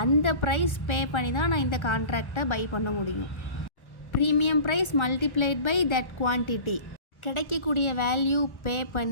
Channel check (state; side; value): late; right; 1.3 ms